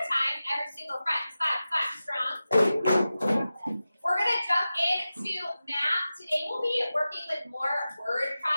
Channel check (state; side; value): inverted; both; correlation -0.94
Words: Every single friend. Clap, clap, strong. We're going to jump into math. Today we'll be working with more word